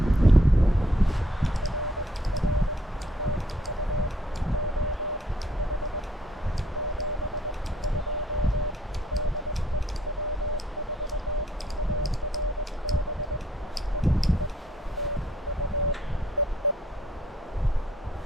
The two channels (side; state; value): both; normal; correlation 0.66